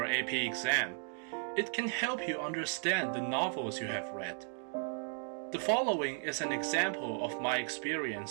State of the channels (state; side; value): silent; left; 54 dB below the other